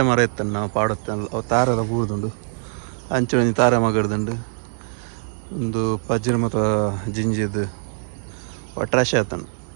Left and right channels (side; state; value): left; silent; 64 dB below the other